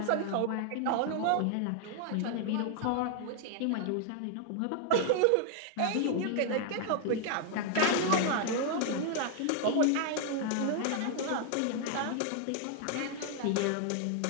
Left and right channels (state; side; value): different; both; correlation 0.00